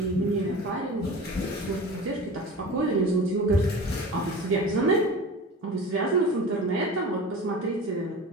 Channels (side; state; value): both; normal; correlation 0.35